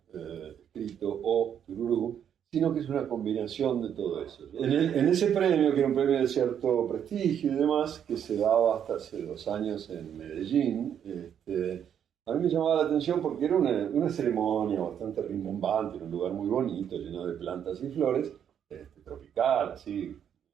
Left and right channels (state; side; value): quieter; left; 8.9 dB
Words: escrito o tururú, sino que es una combinación de todo eso. En ese premio, que era un premio de cierto prestigio y demás, que se daba hasta hace 2 años en Medellín, a mí me llamaba la atención porque era una ceremonia bastante rimbombante, en un lugar muy bonito, lleno de plantas y flores, tropical, así,